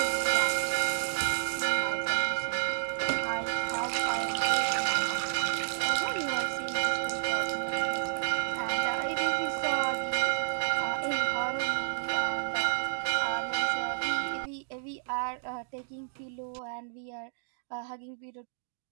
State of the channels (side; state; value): left; silent; digital silence